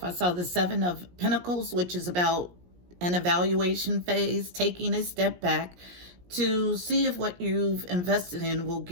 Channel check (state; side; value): late; left; 17 ms